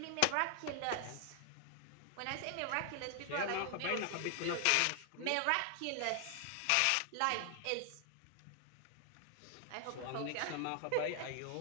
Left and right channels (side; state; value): both; different; correlation 0.00